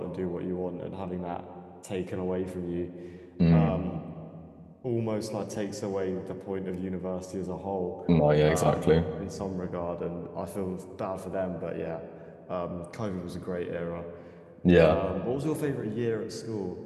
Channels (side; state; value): both; identical; correlation 1.00